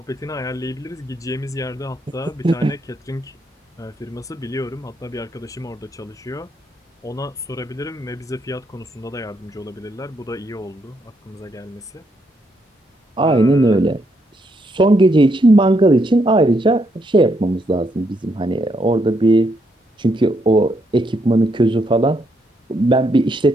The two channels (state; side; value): normal; both; correlation 0.76